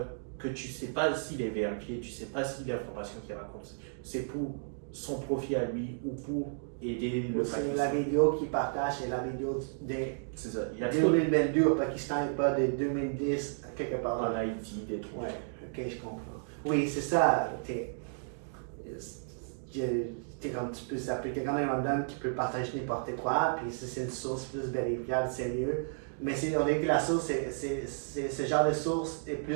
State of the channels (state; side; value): silent; left; digital silence